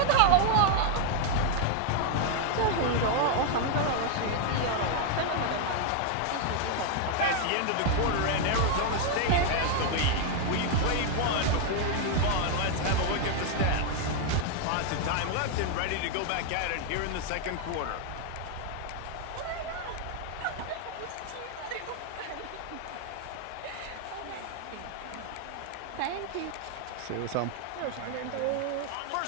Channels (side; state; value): both; different; correlation 0.00